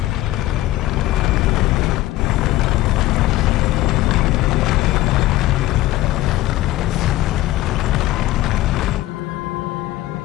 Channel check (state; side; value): quieter; right; 16.4 dB